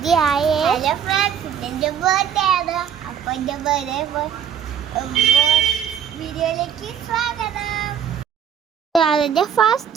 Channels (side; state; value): left; quieter; 8.3 dB